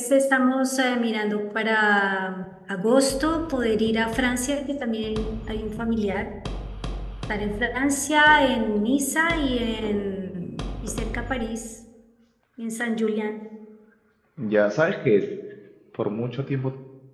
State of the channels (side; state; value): both; identical; correlation 1.00